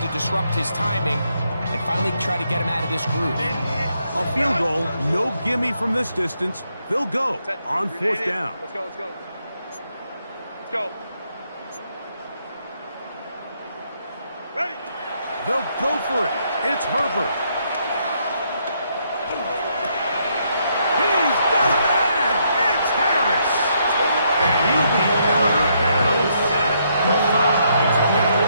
disrupt his timing and finally try to get him out of this groove. A field goal, no gimme from this distance. They'll go on 4th down. Let's go. Ready. They'll go for it. It's Herbert. He's got a man. It's Harris. And he'll be out of bounds at the 5.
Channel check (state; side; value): inverted; both; correlation -0.75